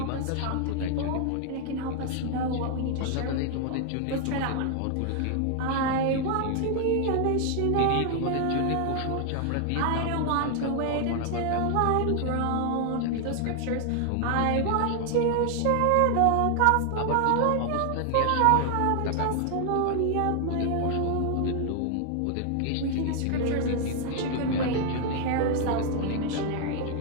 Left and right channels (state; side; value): different; both; correlation 0.00